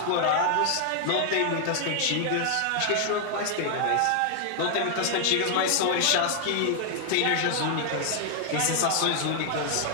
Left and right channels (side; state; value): both; different; correlation 0.00